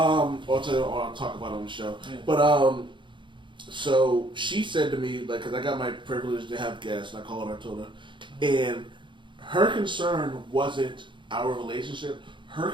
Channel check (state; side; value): late; left; 0.23 ms